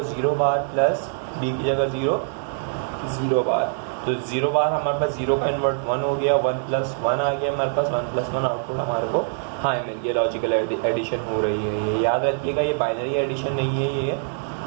0 बार प्लस बी की जगह 0 0 बार, तो 0 बार हमारे पास 0 का इन्वर्ट 1 हो गया, 1 + 1 आ गया हमारे पास, 1 + 1 आउटपुट हमारे को हाई मिल गया। लॉजिकल एडिशन हो रही है। ये याद रखिएगा, ये बाइनरी एडिशन नहीं है, ये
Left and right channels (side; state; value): left; silent; digital silence